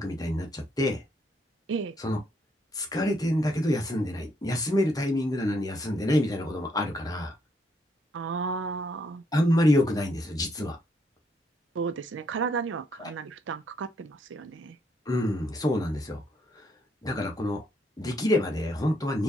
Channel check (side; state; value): both; normal; correlation 0.73